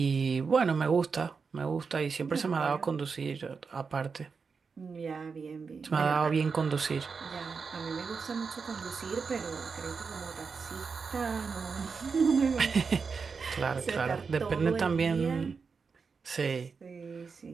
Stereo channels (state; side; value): quieter; left; 5.2 dB